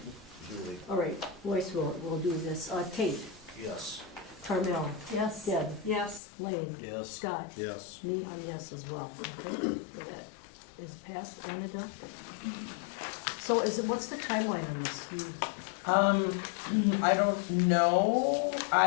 Julie. all right, voice we'll do this. Kate, Yes. Carmel, Yes. Deb, Yes. Lane, Yes. Scott, Yes. me, I'm yes as well. Okay, so that is passed and adopted. So what's the timeline on this? I don't know,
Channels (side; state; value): right; drops out; at 6.2 s